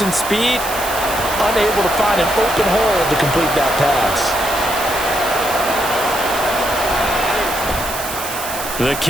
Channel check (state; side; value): noise; right; hiss, 8 dB below the sound